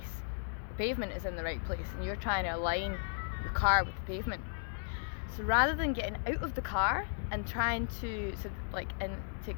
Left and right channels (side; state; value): right; silent; digital silence